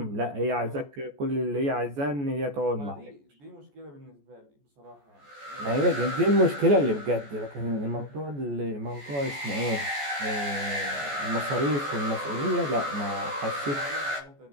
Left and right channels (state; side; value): late; left; 14 ms